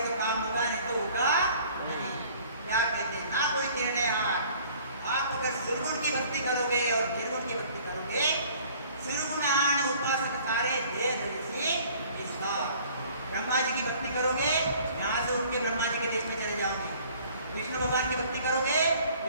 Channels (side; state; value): both; inverted; correlation -0.53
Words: तो काम होगा, नहीं तो होगा नहीं। क्या कहते हैं? ना कोई निर्णय हार। आप अगर सुरगुण की भक्ति करोगे और निर्गुण की भक्ति करोगे, सुरगुणान उपासक सारे दे धरिसी विश्वास। ब्रह्मा जी की भक्ति करोगे, यहाँ से उठ के ब्रह्मा जी के देश में चले जाओगे। विष्णु भगवान की भक्ति करोगे,